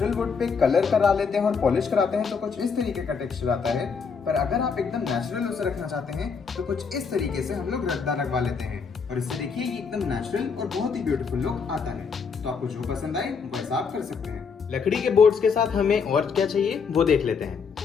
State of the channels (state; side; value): quieter; right; 5.7 dB